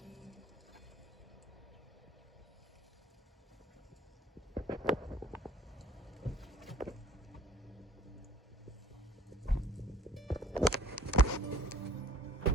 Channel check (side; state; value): both; normal; correlation 0.54